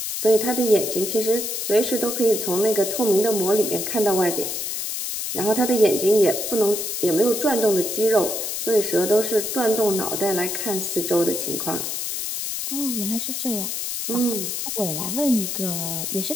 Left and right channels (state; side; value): noise; left; hiss, 3 dB below the sound